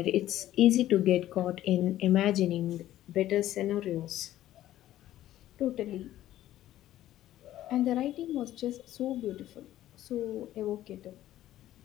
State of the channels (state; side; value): quieter; right; 13.5 dB